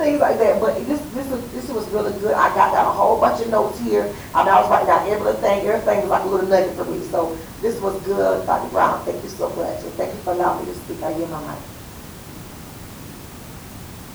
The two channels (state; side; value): identical; both; correlation 1.00